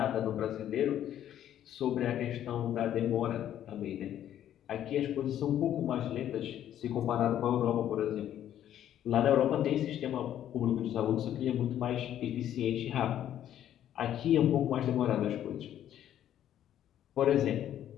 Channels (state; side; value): quieter; right; 11.1 dB